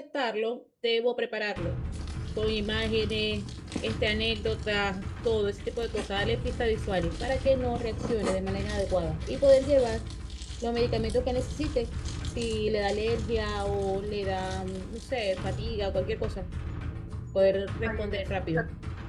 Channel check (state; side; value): identical; both; correlation 1.00